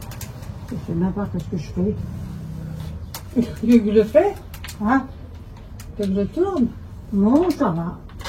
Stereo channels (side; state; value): both; identical; correlation 1.00